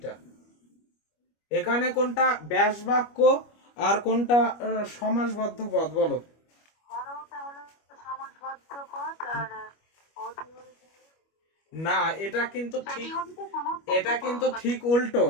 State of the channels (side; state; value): right; late; 25 ms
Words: এখানে কোনটা ব্যাস বাক্য আর কোনটা সমাসবদ্ধ পদ, বলো? হরওটা হলো সমাসবদ্ধ পদ আর অধিহরিটা না, এটা কিন্তু ঠিক, অধিহরিটা সমাসবদ্ধ এটা কিন্তু পদ। ঠিক উল্টো,